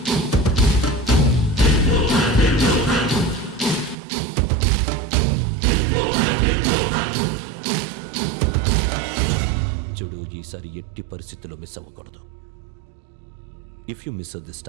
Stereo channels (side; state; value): left; drops out; at 4.0 s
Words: చూడు, ఈసారి ఎట్టి పరిస్థితుల్లో మిస్ అవ్వకూడదు. If you miss this